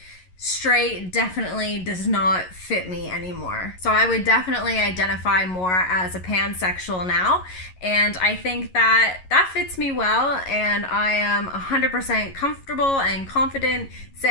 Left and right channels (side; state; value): right; late; 11 ms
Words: straight definitely does not fit me anymore. So I would definitely identify more as a pansexual now, and I think that fits me well, and I am 100% comfortable and confident